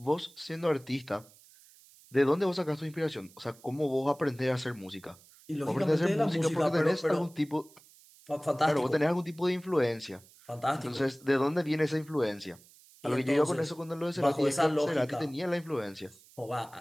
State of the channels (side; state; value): right; noise; hiss, 25 dB below the sound